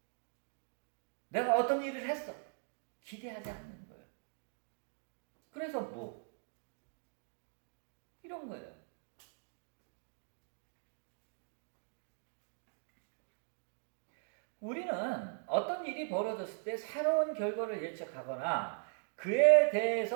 내가 어떤 일을 했어. 기대하지 않는 거예요. 그래서 이런 거예요. 우리는 어떤 일이 벌어졌을 때 새로운 결과를 예측하거나 그에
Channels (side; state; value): left; silent; 52 dB below the other